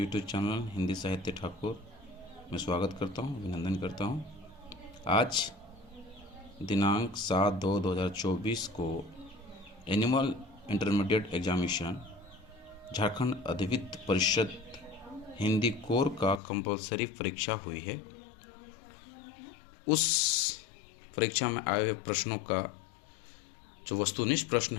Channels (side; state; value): right; drops out; at 16.4 s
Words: चैनल हिंदी साहित्य ठाकुर में स्वागत करता हूं, अभिनंदन करता हूं। आज दिनांक 7/2/2024 को एनुअल इंटरमीडिएट एग्जामिनेशन झारखंड अधिविद्य परिषद हिंदी कोर का कंपलसरी परीक्षा हुई है। उस परीक्षा में आए हुए प्रश्नों का जो वस्तुनिष्ठ प्रश्न